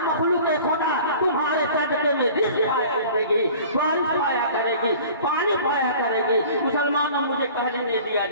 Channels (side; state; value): both; inverted; correlation -0.45